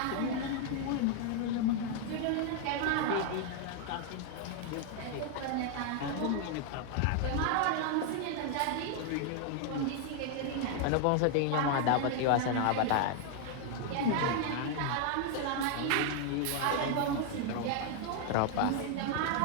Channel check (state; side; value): different; both; correlation 0.00